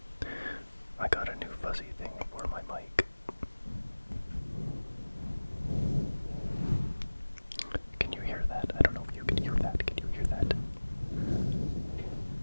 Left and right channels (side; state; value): both; inverted; correlation -1.00